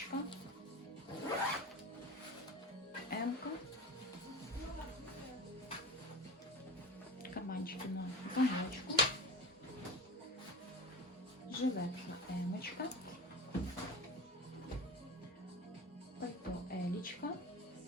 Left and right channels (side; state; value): both; normal; correlation 0.30